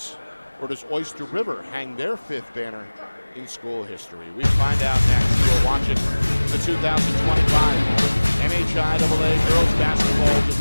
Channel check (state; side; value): inverted; both; correlation -1.00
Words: Or does Oyster River hang their 5th banner in school history? We find out next. You're watching the 2025 NHIAA Girls Basketball